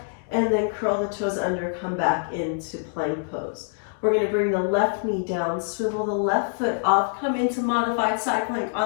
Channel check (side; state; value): right; silent; digital silence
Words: and then curl the toes under, come back into plank pose. We're gonna bring the left knee down, swivel the left foot off, come into modified side plank